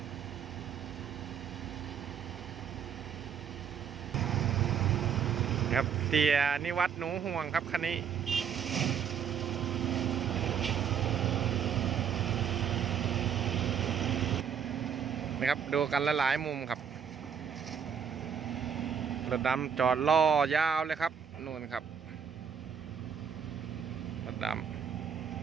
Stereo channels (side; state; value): left; quieter; 7.5 dB